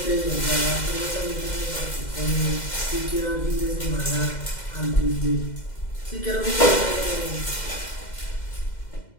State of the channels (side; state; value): right; late; 2.1 ms